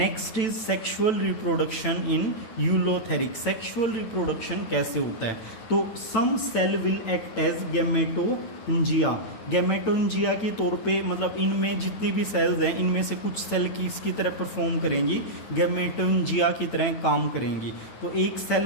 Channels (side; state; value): right; late; 9.0 ms